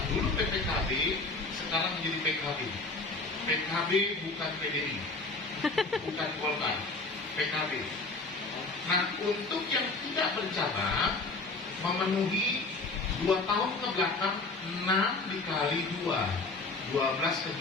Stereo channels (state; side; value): quieter; right; 3.5 dB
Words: Dulu PPKB, sekarang menjadi PKB. PKB bukan PDI, bukan Golkar, PKB. Nah, untuk yang tidak bercabang, memenuhi 2 tahun ke belakang 6 dikali 2, 12